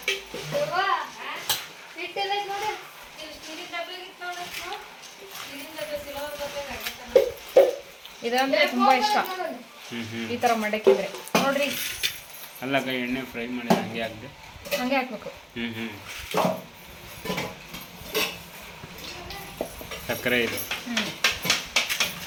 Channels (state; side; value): identical; both; correlation 1.00